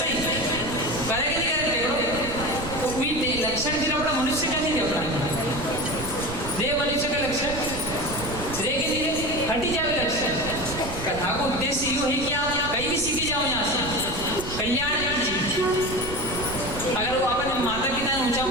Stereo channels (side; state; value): right; noise; rumble, 9 dB below the sound